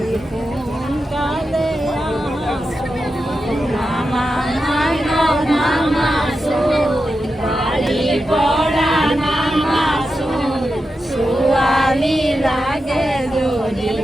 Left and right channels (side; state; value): both; normal; correlation 0.89